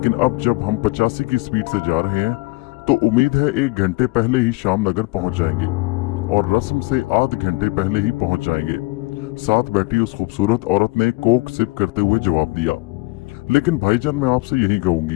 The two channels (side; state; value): right; quieter; 24.2 dB